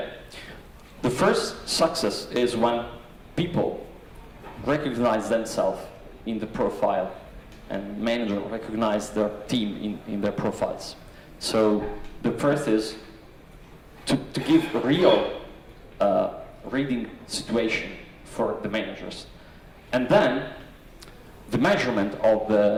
The first success is when people recognize themselves in the profile and manager recognize their team in their profiles. So the first is to give a real reading situation for the managers. And then the measurement of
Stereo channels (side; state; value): both; identical; correlation 1.00